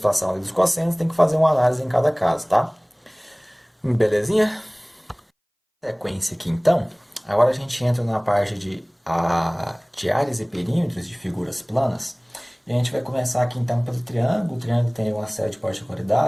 a lei dos cossenos, tem que fazer uma análise em cada caso, tá? Belezinha? Sequência aqui, então. Agora a gente entra na parte de áreas e perímetros de figuras planas. E a gente vai começar aqui então pelo triângulo. O triângulo tem uma série de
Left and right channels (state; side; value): identical; both; correlation 1.00